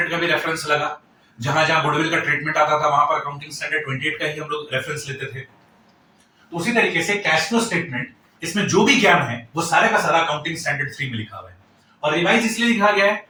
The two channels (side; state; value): both; identical; correlation 1.00